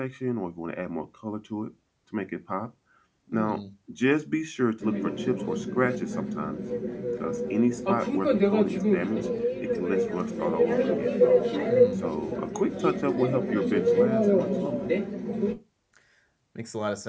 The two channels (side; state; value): both; identical; correlation 1.00